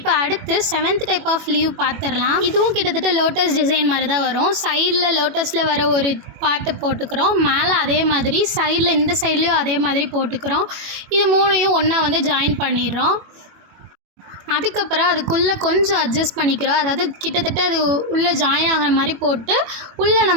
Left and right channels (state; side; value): late; left; 21 ms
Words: அடுத்து 7th டைப் ஆஃப் லீவ் பார்த்துடலாம். இதுவும் கிட்டத்தட்ட லோட்டஸ் டிசைன் மாதிரி தான் வரும். சைடில் லோட்டஸில் வர ஒரு பார்ட்டு போட்டுக்கிறோம், மேலே அதே மாதிரி சைடில் இந்த சைட்லேயும் அதே மாதிரி போட்டுக்கிறோம். இது மூணையும் ஒன்றா வந்து ஜாயின் பண்ணிடுறோம். அதுக்கப்புறம் அதுக்குள்ளே கொஞ்சம் அட்ஜஸ்ட் பண்ணிக்கிறோம், அதாவது கிட்டத்தட்ட அது உள்ளே ஜாயின் ஆகிற மாதிரி போட்டு உள்ளே